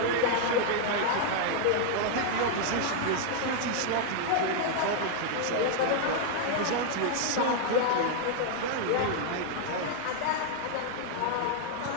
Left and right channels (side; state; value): both; different; correlation 0.00